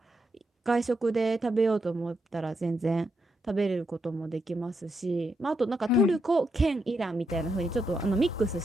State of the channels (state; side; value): normal; both; correlation 0.81